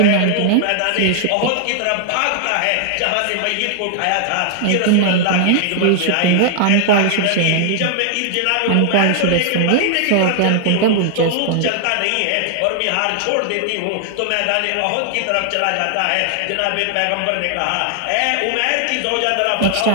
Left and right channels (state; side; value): different; both; correlation 0.00